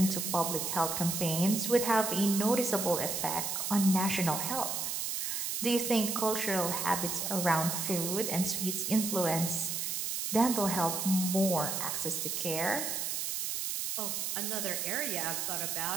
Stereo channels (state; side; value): noise; right; hiss, 2 dB below the sound